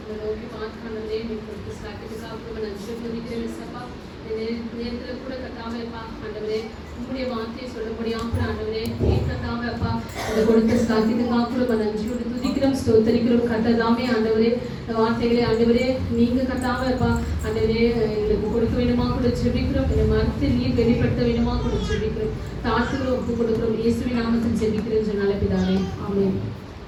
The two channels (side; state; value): both; identical; correlation 1.00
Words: நோக்கி பார்த்து ஆண்டவரே கொடுத்து சாக்கிட்டுக்காக நன்றி துதிக்கிறேன் சப்பா. நேரத்தில் கூட கத்தாவேப்பா ஆண்டவரே உங்களுடைய வார்த்தையை சொல்ல முடியாமல் ஆண்டவரே கத்தாவேப்பா அதை கொடுத்த சாக்கிட்டுக்காக கூட நன்றியோடு துதிக்கிறோம் ஸ்தோத்தரிக்கிறோம் கத்ததாமே ஆண்டவரே வார்த்தைகளை ஆண்டவரே நீங்க கத்தாவேப்பா ஆண்டவரே எங்களுக்கு கொடுக்க வேணுமா கூட ஜெபிக்கிறோம். இந்த மரத்தை நீர் வெளிப்படுத்த வேணுமா கூட ஜெபிக்கிறோம். தாழ்த்துக்கிறோம், ஒப்பு கொடுக்கிறோம். இயேசுவின் நாமத்தில் ஜெபிக்கிறேன் சொன்னால பிதாவே ஆமென்.